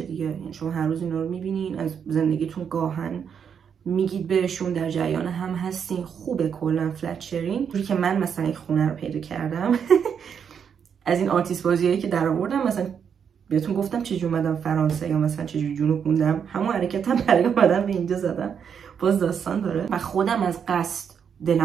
دیگه. یعنی شما هر روز اینا رو میبینین، از زندگیتون گاهن میگید بهشون، در جریان هم هستین. خوبه کلا فلت شیرینگ. جوری که من مثلا یک خونه رو پیدا کردم از این آرتیست بازیایی که در آوردم، مثلا بهتون گفتم چجوری اومدم فرانسه یا مثلا چجوری جنوب موندم، همون حرکتم برای اومدن به اینجا زدم. باز داستان داره و خودم از قصد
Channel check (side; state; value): left; quieter; 7.4 dB